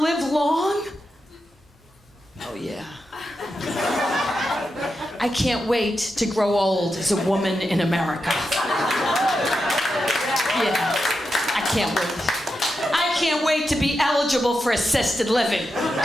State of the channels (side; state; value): both; normal; correlation 0.88